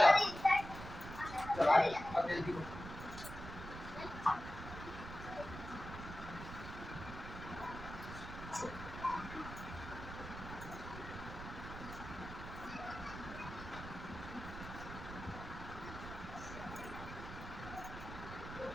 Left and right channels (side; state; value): right; noise; rumble, 10 dB below the sound